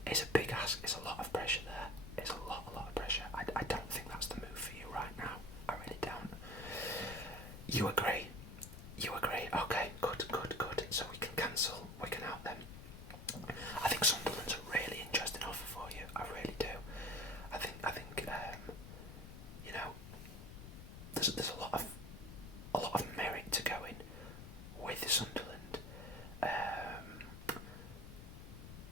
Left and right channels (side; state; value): left; noise; rumble, 11 dB below the sound